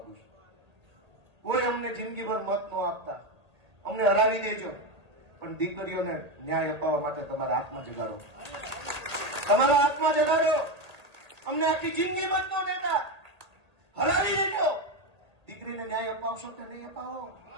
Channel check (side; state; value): left; late; 1.8 ms